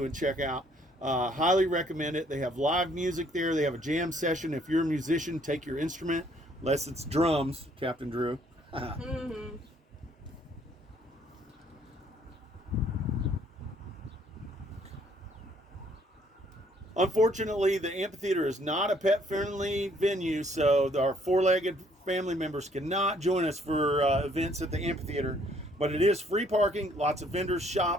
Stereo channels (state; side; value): normal; both; correlation 0.64